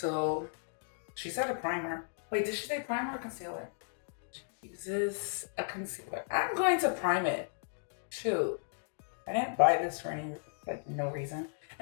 she said a primer. Wait, did she say primer or concealer? She uses a concealer. I'm going to prime it. Shoot. I didn't buy this for any, like, no reason.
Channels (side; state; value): right; silent; digital silence